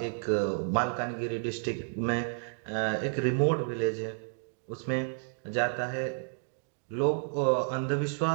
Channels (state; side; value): silent; left; digital silence